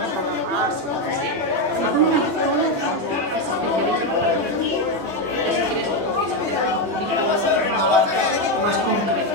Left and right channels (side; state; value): left; late; 21 ms